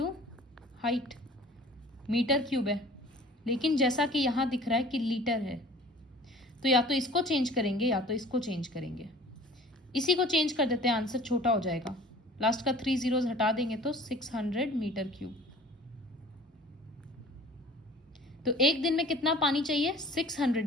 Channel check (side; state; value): both; normal; correlation 0.47